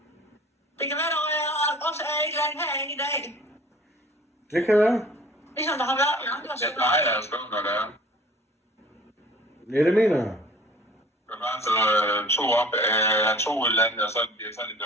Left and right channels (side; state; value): both; normal; correlation 0.48